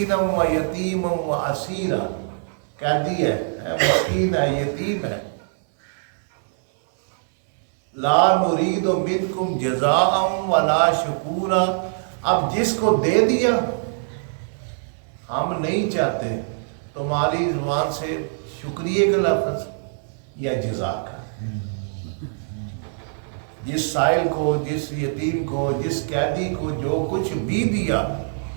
و یتیمم و اسیرا، قیدی ہے، مسکین ہے، یتیم ہے، لا نرید منکم جزاء ولا شکورا، اب جس کو دے دیا ہم نہیں چاہتے تمہاری زبان سے شکریہ کا لفظ یا جزا کا۔ جس سائل کو، جس یتیم کو، جس قیدی کو جو کچھ بھی دیا،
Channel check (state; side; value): silent; left; 63 dB below the other